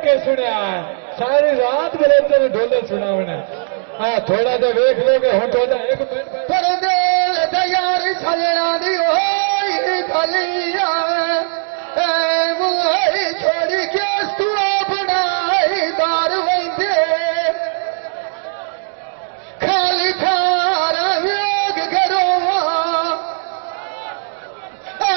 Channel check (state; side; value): silent; left; digital silence